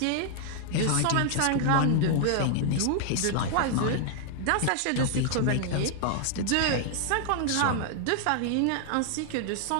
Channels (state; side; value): different; both; correlation 0.00